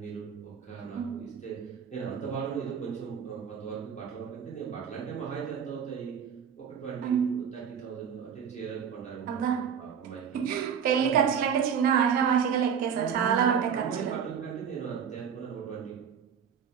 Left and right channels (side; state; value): left; quieter; 7.5 dB